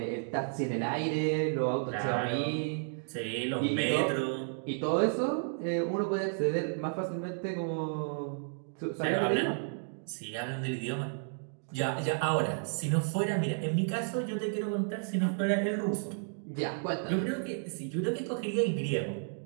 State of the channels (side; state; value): left; silent; digital silence